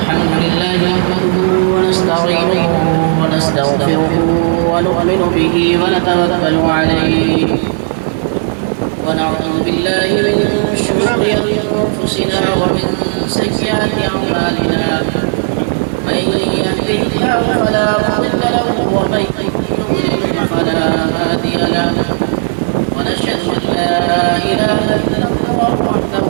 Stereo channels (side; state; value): left; silent; digital silence